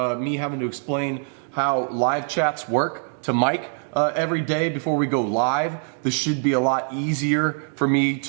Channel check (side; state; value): left; silent; 55 dB below the other